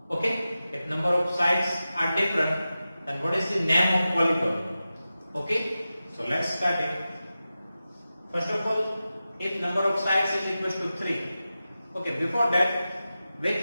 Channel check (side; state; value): both; inverted; correlation -0.94